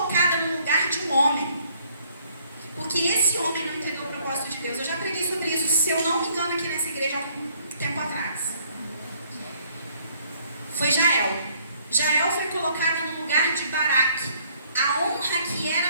no lugar de um homem. Porque esse homem não entendeu o propósito de Deus. Eu já preguei sobre isso, se eu não me engano, aqui nessa igreja há algum tempo atrás. Foi Jael. Jael foi colocada no lugar de Baraque. A honra que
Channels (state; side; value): inverted; both; correlation -0.63